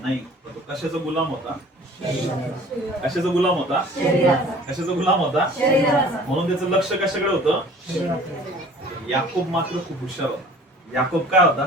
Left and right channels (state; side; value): normal; both; correlation 0.48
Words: नाही. तो कशाचा गुलाम होता? कशाचा गुलाम होता? कशाचा गुलाम होता? म्हणून त्याचं लक्ष कशाकडे होतं? याकूब मात्र खूप हुशार होता. याकूब काय होता?